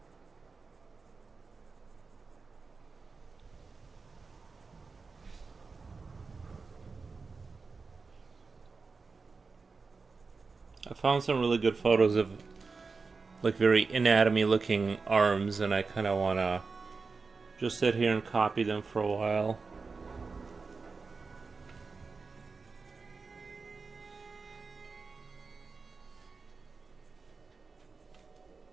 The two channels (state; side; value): quieter; left; 4.5 dB